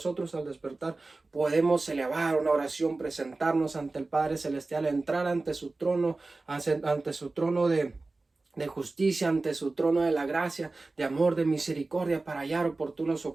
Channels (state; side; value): quieter; left; 3.4 dB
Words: al despertar podemos elevar una oración, presentarnos ante el Padre Celestial, entrar ante su trono, ante su trono de justicia, ante su trono de la gracia, de amor, de misericordia, para hallar oportuno